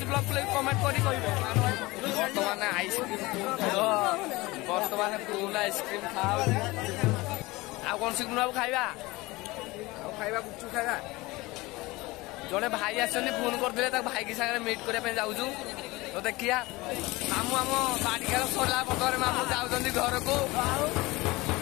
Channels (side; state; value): right; quieter; 21.5 dB